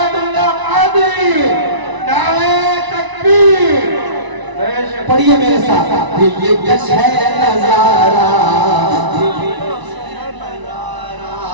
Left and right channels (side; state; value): left; late; 1.0 ms